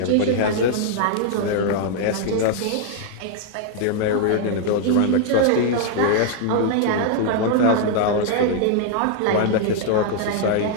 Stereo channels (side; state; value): both; different; correlation -0.01